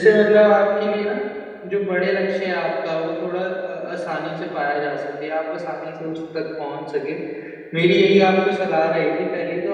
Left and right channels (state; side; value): identical; both; correlation 1.00